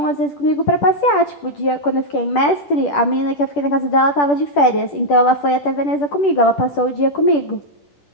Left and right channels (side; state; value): right; late; 10 ms